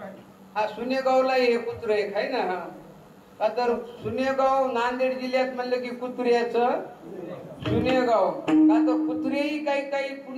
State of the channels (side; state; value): both; identical; correlation 1.00